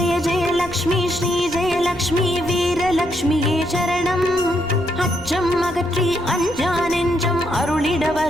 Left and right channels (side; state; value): left; noise; rumble, 16 dB below the sound